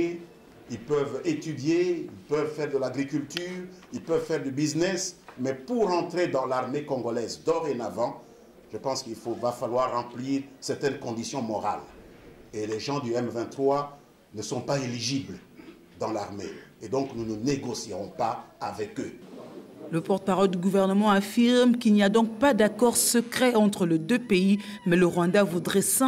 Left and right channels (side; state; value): both; identical; correlation 1.00